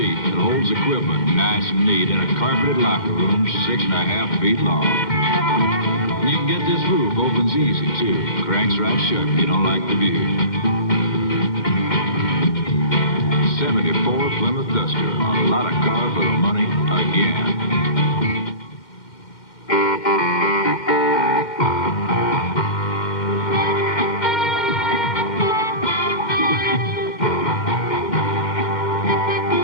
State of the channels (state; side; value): late; right; 2.1 ms